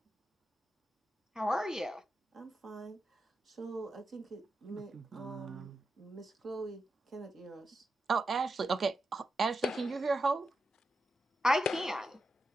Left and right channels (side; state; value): both; normal; correlation 0.88